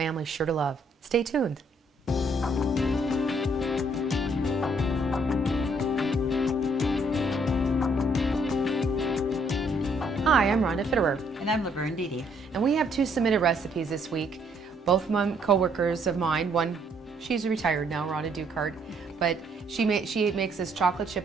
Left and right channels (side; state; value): both; normal; correlation 0.68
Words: sure to love. Stay tuned. Hi, I'm Rhonda Fitterer. And I'm Laverne. And we have 2 submitted recipes this week. Both co-workers of mine, one, she's retired now, Rhonda Dukart, but she makes this chocolate chip